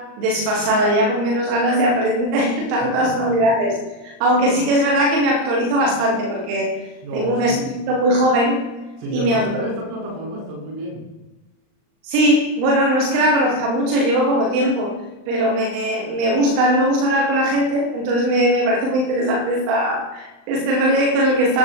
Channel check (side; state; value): left; late; 39 ms